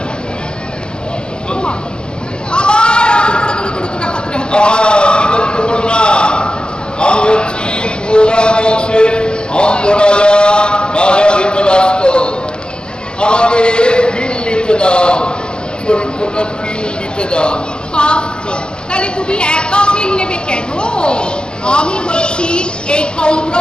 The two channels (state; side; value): late; right; 0.047 ms